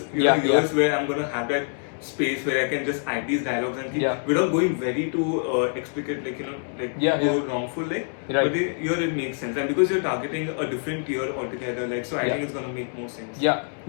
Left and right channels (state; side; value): silent; right; 56 dB below the other